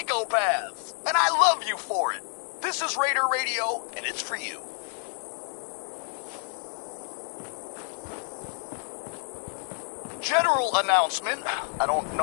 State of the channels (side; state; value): right; silent; digital silence